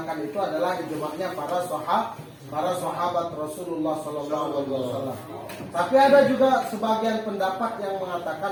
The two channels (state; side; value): identical; both; correlation 1.00